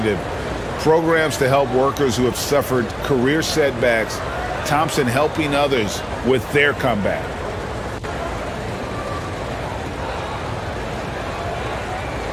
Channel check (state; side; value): identical; both; correlation 1.00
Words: Programs to help workers who have suffered career setbacks. Thompson helping others with their comeback.